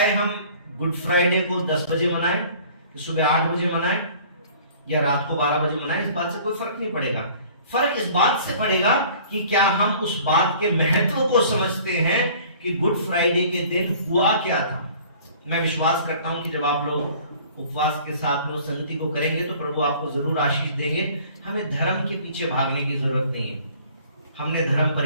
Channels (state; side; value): inverted; both; correlation -0.51